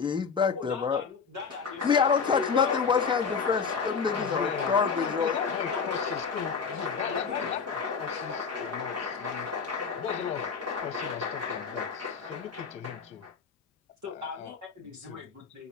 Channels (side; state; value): right; quieter; 5.7 dB